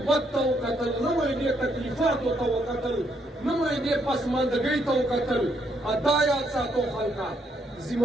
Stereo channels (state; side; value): normal; both; correlation 0.73